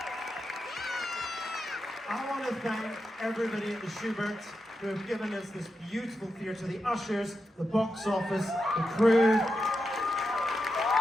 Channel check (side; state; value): both; normal; correlation 0.87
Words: I want to thank everybody at the Schubert who have given us this beautiful theatre, the ushers, the box office, the crew.